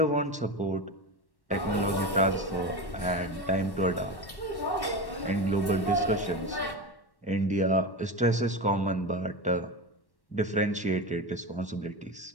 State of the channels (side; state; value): right; late; 1.1 ms